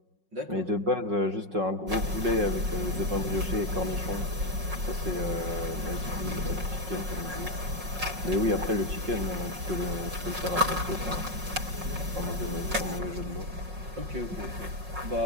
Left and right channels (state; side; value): late; left; 5.5 ms